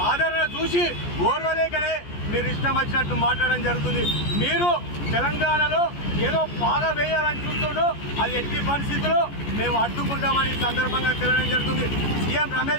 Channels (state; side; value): late; right; 14 ms